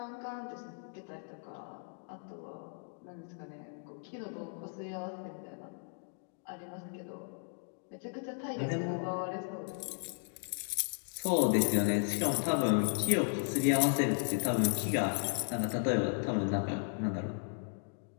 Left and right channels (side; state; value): right; silent; 54 dB below the other